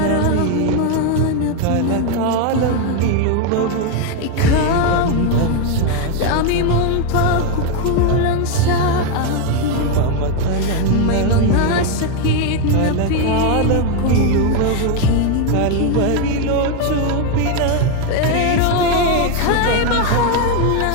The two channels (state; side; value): different; both; correlation 0.01